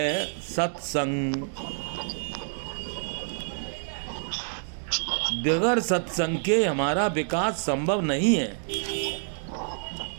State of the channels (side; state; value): left; silent; digital silence